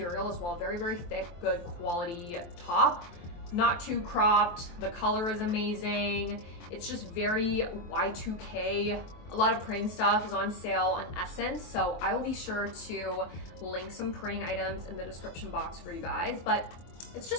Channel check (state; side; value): late; right; 23 ms